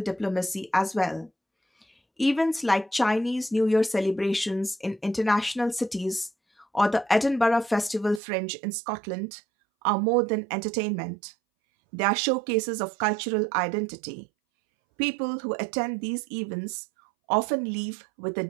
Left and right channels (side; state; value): left; drops out; at 8.2 s